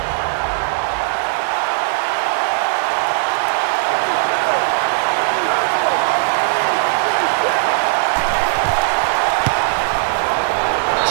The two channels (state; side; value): silent; left; digital silence